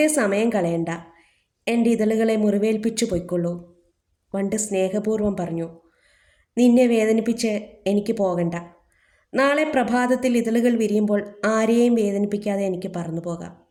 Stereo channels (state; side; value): identical; both; correlation 1.00